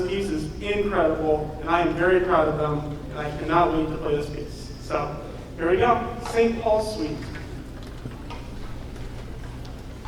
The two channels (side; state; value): both; identical; correlation 1.00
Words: piece is incredible, and I am very proud of them, and I cannot wait to play this piece. So, here we go, St. Paul's Suite.